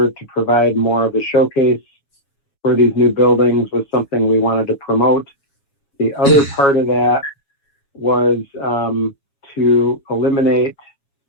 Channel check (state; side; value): late; right; 7.1 ms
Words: to provide more of a showcase for these new buildings was something we wanted to promote. The other part of that was to eliminate